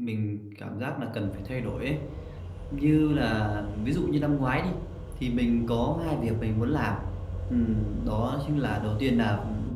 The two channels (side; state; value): both; identical; correlation 1.00